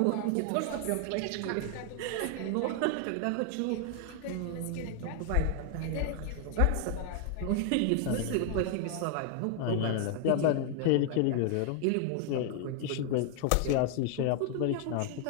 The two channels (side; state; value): both; different; correlation 0.00